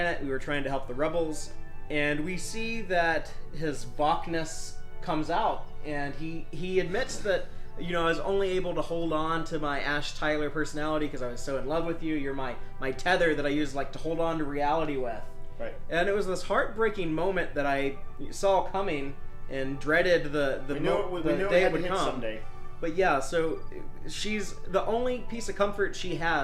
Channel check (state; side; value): identical; both; correlation 1.00